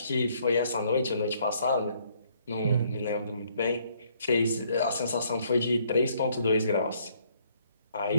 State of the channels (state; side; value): inverted; both; correlation -0.66